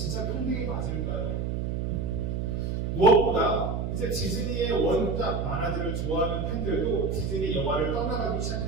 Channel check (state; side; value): noise; right; hum, 1 dB below the sound